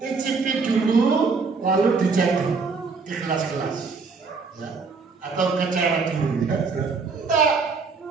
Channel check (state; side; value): quieter; left; 4.7 dB